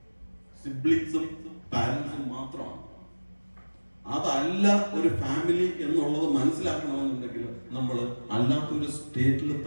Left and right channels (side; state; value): both; inverted; correlation -1.00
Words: സിബ്ലിങ്സും പാരന്റ്സും മാത്രമാണ്. അതല്ല ഒരു ഫാമിലി എന്നുള്ളത് മനസ്സിലാക്കണമെന്നുണ്ടെങ്കിൽ നമ്മൾ അല്ലാത്തൊരു സ്റ്റേറ്റിൽ